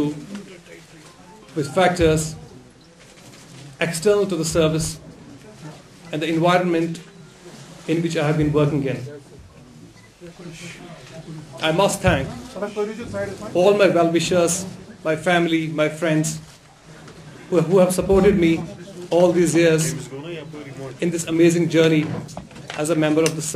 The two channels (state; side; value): identical; both; correlation 1.00